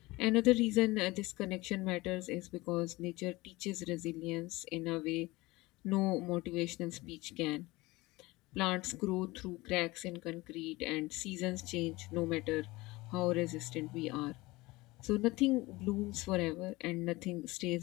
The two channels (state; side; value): quieter; right; 21.1 dB